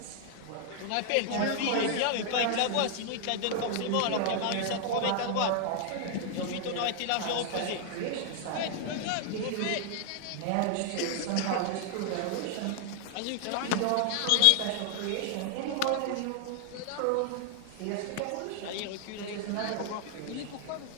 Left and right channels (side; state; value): both; different; correlation 0.00